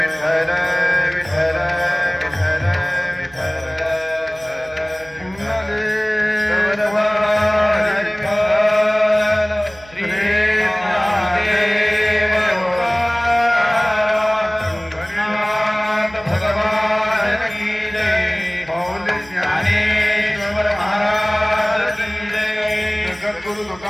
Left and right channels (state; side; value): noise; right; hum, 23 dB below the sound